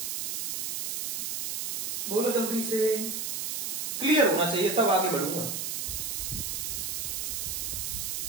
बोलो जल्दी से, क्लियर होना चाहिए तब आगे बढ़ूंगा।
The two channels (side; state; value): right; noise; hiss, 2 dB below the sound